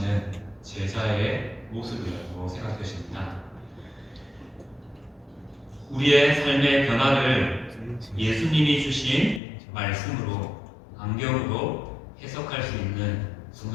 제자의 모습이라고 생각되십니다. 우리의 삶의 변화를 예수님이 주신 말씀으로, 안경으로 해석할 수 있는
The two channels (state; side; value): drops out; right; at 9.4 s